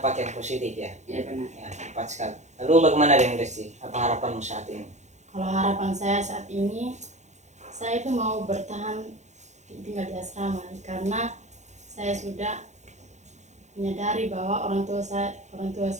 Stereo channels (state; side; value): late; left; 0.34 ms